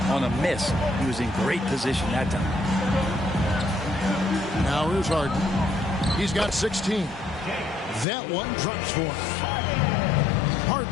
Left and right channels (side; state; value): right; drops out; at 8.1 s